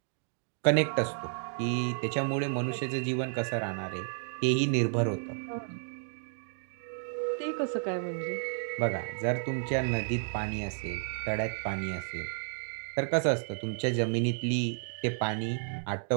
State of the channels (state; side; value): silent; left; digital silence